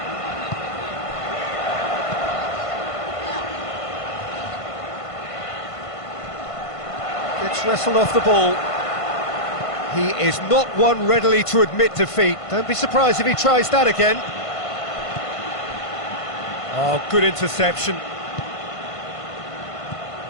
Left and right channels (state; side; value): late; right; 1.5 ms